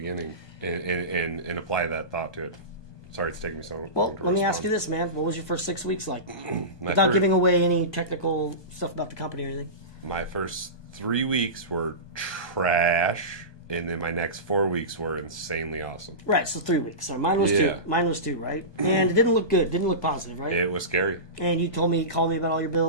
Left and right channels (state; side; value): late; right; 1.2 ms